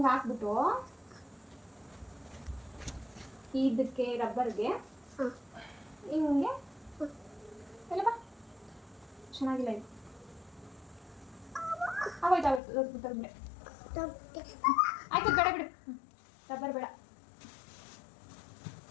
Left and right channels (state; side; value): drops out; right; at 12.6 s